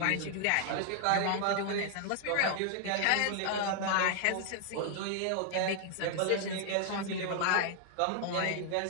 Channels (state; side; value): different; both; correlation 0.00